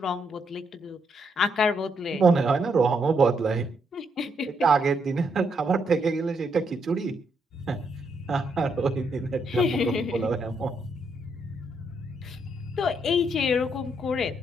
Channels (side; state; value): both; normal; correlation 0.76